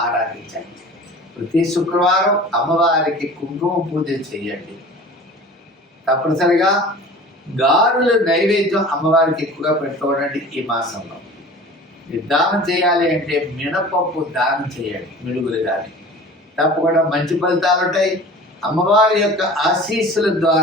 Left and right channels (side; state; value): both; normal; correlation 0.41